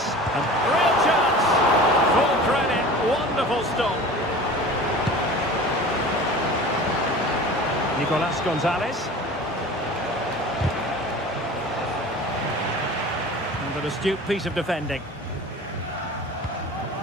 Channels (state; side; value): normal; both; correlation 0.39